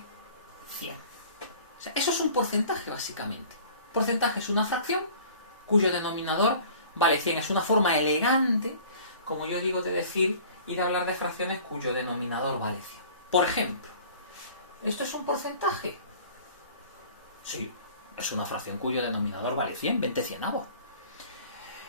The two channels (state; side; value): inverted; both; correlation -0.47